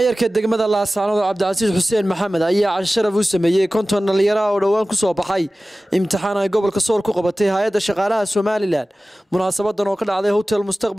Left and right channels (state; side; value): normal; both; correlation 0.96